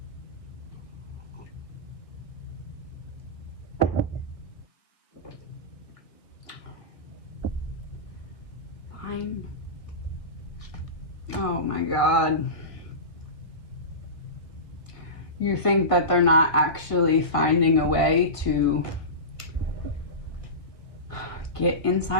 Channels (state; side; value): late; right; 1.7 ms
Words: Fine. Oh my God. You think that they're not actually finding a way to get